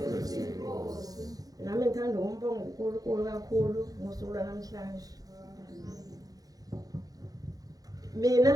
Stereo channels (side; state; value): left; late; 0.18 ms